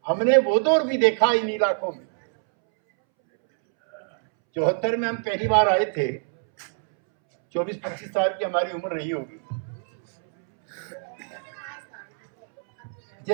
हमने वो दौर भी देखा इन इलाकों में। 74 में हम पहली बार आए थे, 24-25 साल की हमारी उम्र रही होगी।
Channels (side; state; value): left; silent; 62 dB below the other